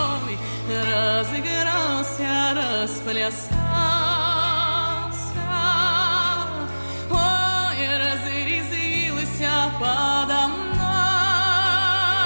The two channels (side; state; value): both; inverted; correlation -1.00